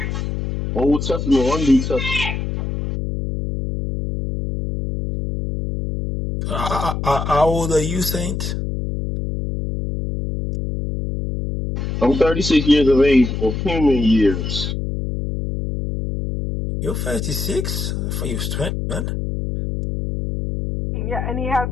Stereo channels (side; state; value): left; noise; hum, 3 dB below the sound